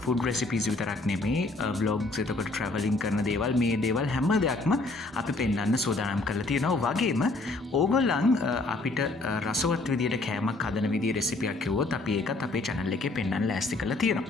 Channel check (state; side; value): quieter; right; 3.2 dB